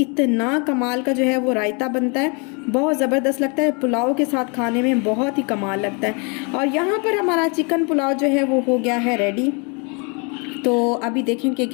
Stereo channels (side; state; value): right; quieter; 33.4 dB